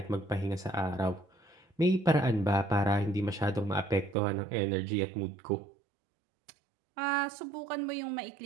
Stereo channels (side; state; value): left; drops out; at 4.2 s